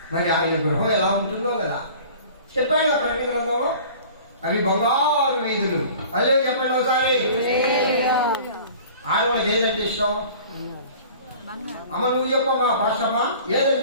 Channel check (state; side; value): inverted; both; correlation -0.45